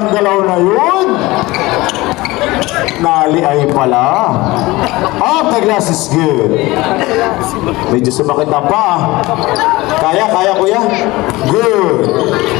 galaw na yun. Naliay pala. Off the glass is good. Medyo sumakit na pa. Kaya kuya. Good.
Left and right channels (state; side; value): quieter; right; 20.4 dB